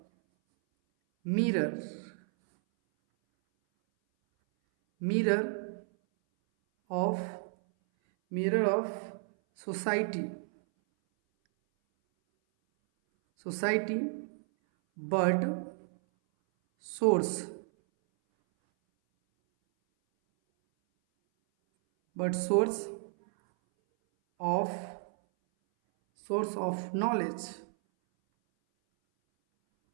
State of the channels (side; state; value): left; silent; 57 dB below the other